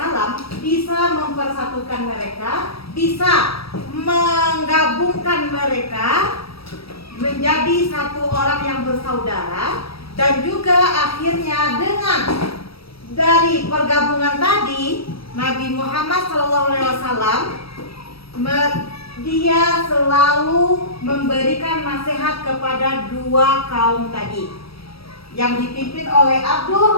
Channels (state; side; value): late; right; 0.76 ms